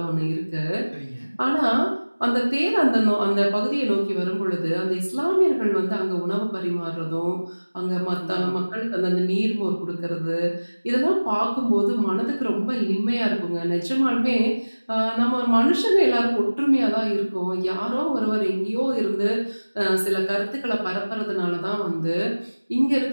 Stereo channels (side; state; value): both; inverted; correlation -1.00